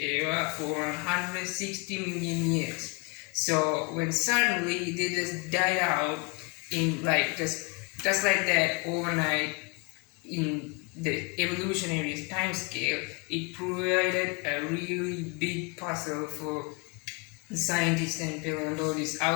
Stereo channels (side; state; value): right; quieter; 31.4 dB